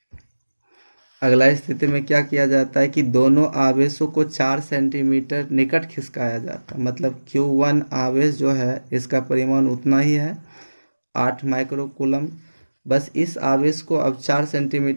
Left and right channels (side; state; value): both; inverted; correlation -1.00